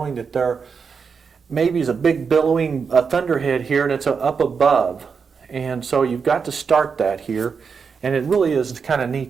that there maybe is a big billowing thunderhead here and it's up above. And so you've got to start that here. And it really is kind of neat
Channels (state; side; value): quieter; left; 5.8 dB